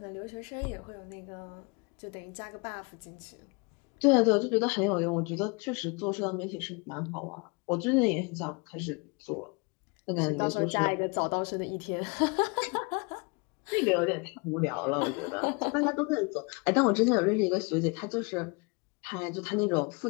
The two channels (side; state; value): right; quieter; 30.8 dB